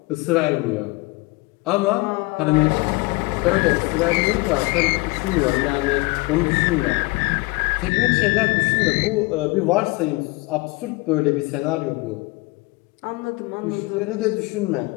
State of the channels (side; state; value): right; quieter; 23.8 dB